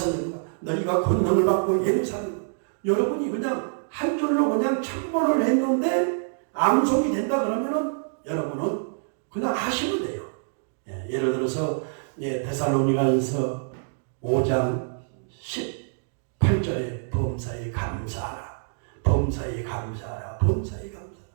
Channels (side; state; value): left; silent; digital silence